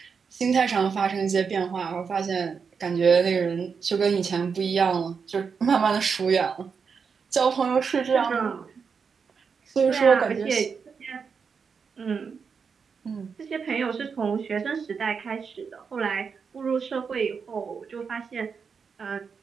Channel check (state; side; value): quieter; left; 5.9 dB